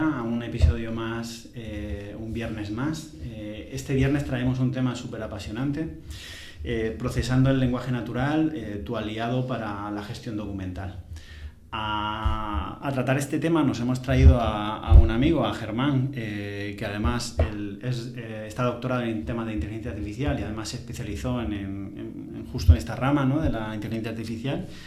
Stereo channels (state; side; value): identical; both; correlation 1.00